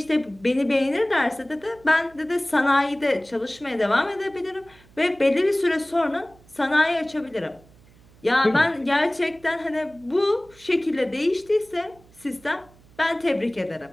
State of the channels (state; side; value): noise; right; hum, 27 dB below the sound